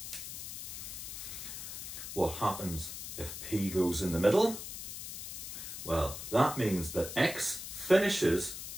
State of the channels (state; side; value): noise; left; hiss, 8 dB below the sound